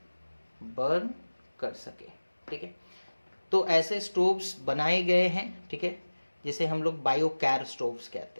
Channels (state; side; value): inverted; both; correlation -1.00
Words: बर्न कर सके, ठीक है। तो ऐसे स्टोव्स बनाए गए हैं, ठीक है, जिसे हम लोग बायोगैस स्टोव्स